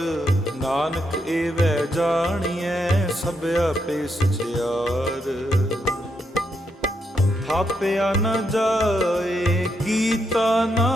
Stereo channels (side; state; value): both; normal; correlation 0.80